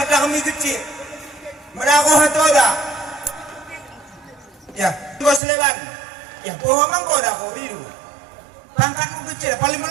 dah kami kecil. Merako hatoda. Ya, kau selewan. Ya, pohon kau dah kau biru. Pangkat kecil paling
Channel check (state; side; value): drops out; left; at 5.4 s